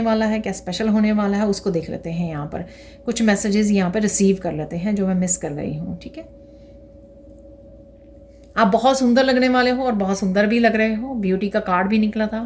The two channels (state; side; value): identical; both; correlation 1.00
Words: वाला है, क्या स्पेशल होने वाला है, उसको देख लेते हैं यहाँ पर। कुछ मैसेजेस यहाँ पे रिसीव कर लेते हैं जो मैं मिस कर गई हूँ, ठीक है। आप बहुत सुंदर लगने वाले हो और बहुत सुंदर भी लग रहे हो। ब्यूटी का कार्ड भी निकला